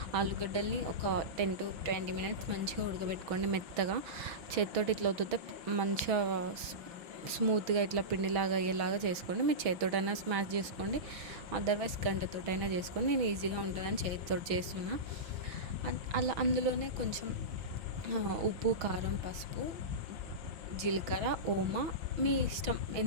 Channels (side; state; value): left; late; 6.2 ms